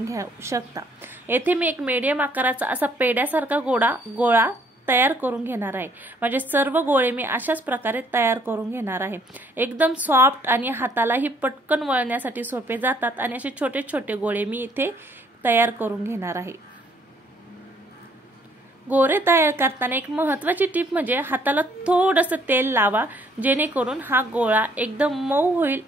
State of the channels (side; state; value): both; normal; correlation 0.64